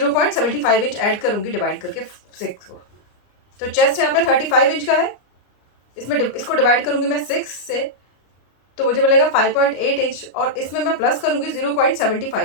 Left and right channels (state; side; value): late; right; 33 ms